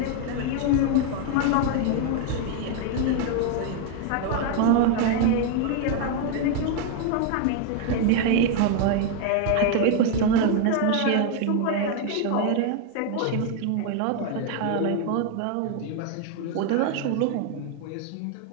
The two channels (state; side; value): different; both; correlation 0.01